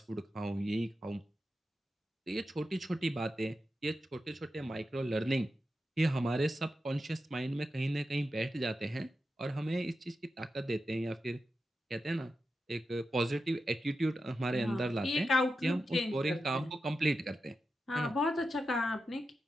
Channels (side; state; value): both; normal; correlation 0.90